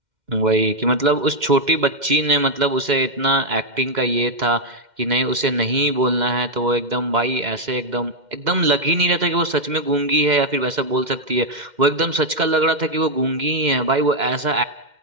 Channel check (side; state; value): left; late; 2.1 ms